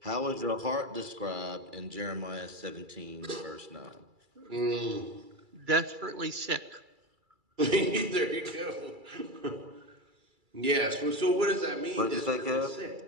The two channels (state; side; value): late; left; 2.3 ms